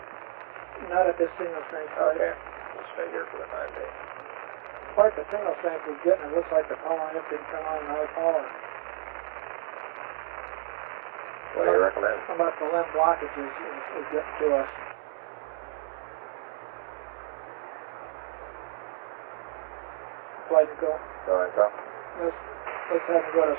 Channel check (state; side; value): silent; left; digital silence